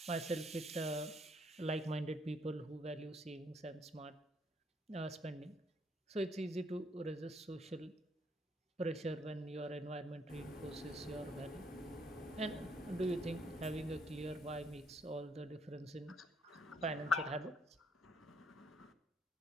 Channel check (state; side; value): normal; both; correlation 0.69